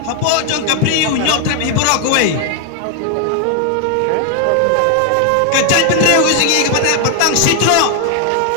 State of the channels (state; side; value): different; both; correlation 0.00